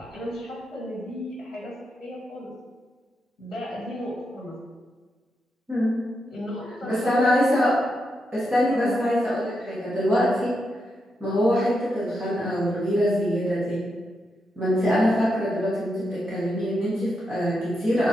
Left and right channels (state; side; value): normal; both; correlation 0.84